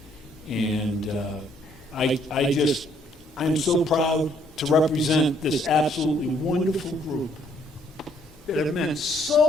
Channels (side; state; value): both; normal; correlation 0.66